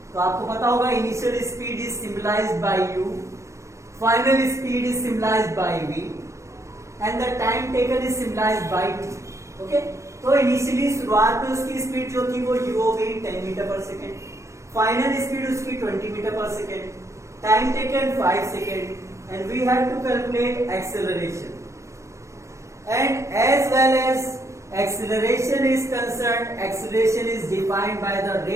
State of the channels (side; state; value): left; late; 0.14 ms